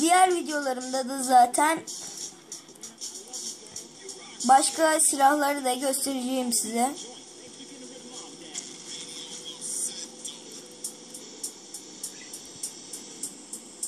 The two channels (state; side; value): identical; both; correlation 1.00